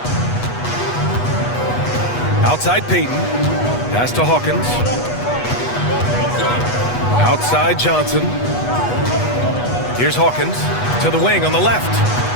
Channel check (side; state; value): right; late; 8.2 ms